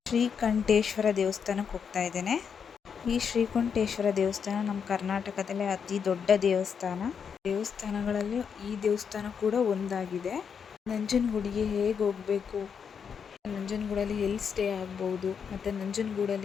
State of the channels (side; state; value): right; quieter; 6.8 dB